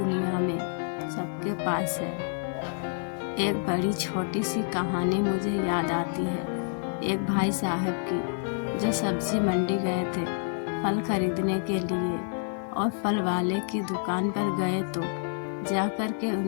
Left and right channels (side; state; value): right; silent; digital silence